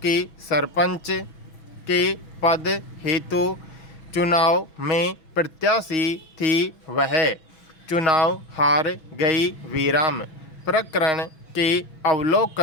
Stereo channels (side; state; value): right; late; 6.1 ms